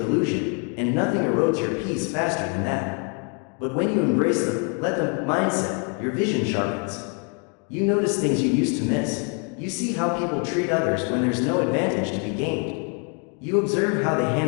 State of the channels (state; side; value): quieter; right; 38.3 dB